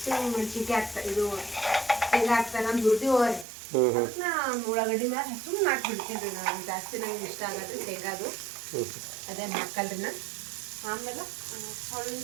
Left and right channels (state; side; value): drops out; left; at 3.5 s